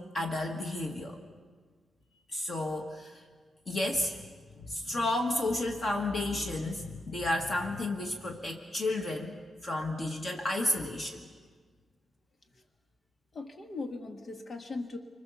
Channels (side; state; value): both; normal; correlation 0.84